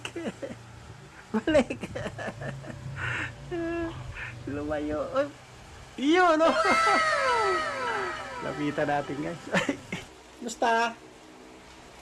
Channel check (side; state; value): both; identical; correlation 1.00